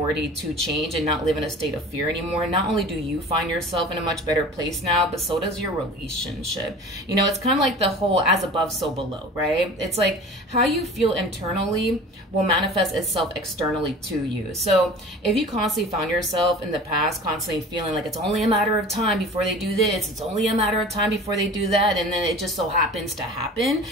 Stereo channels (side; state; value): both; normal; correlation 0.40